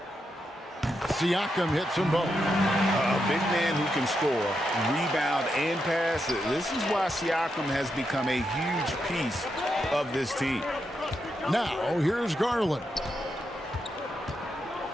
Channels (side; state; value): both; normal; correlation 0.84